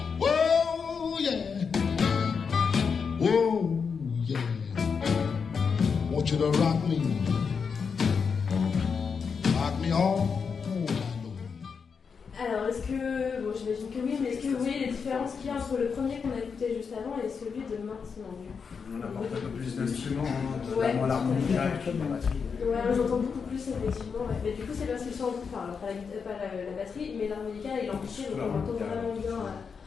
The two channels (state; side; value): quieter; right; 5.9 dB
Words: Oh yeah. Oh yeah. Want you to rock me. Rock me all night long. Alors, est-ce que. Bon, j'imagine que oui, mais est-ce que vous voyez les différences qu'il y a entre le premier qu'on a écouté juste avant et celui de maintenant du coup? On apporte un peu plus d'instruments, Ouais. notamment l'harmonica et puis la batterie. Ouais, j'entends beaucoup plus effectivement. Ouais. Mais du coup, c'est parce qu'ils sont. Enfin, pas la batterie, mais l'harmonica et l'amplifié, donc on entend vraiment bien.